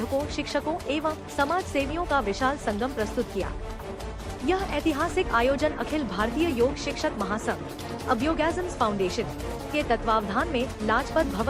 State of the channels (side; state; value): both; identical; correlation 1.00